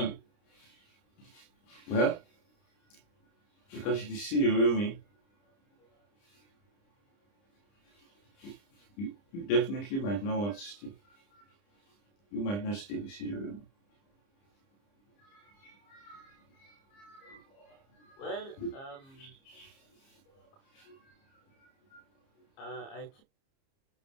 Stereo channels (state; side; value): late; right; 30 ms